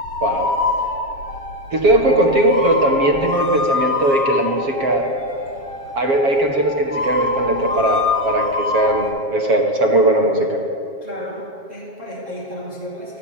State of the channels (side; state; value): left; late; 7.4 ms